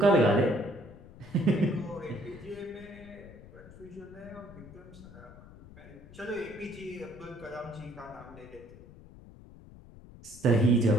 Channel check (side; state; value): left; noise; rumble, 18 dB below the sound